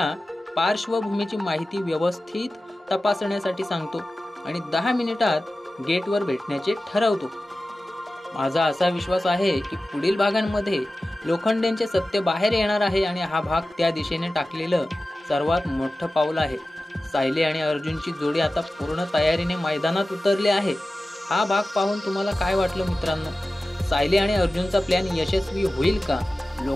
पार्श्वभूमीची माहिती व्यवस्थित तपासण्यासाठी सांगतो आणि 10 मिनिटात गेटवर भेटण्याचे ठरवतो. माझा असा विश्वास आहे की पुढील भागांमध्ये लोखंडेंचे सत्य बाहेर येणार आहे आणि हा भाग त्या दिशेने टाकलेलं सर्वात मोठं पाऊल आहे. सायली आणि अर्जुनची जोडी आता पूर्ण तयारीने मैदानात उतरली आहे. हा भाग पाहून तुम्हाला काय वाटलं मित्रांनो? सायली आणि अर्जुनचा प्लॅन यशस्वी होईल का?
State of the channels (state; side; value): normal; both; correlation 0.95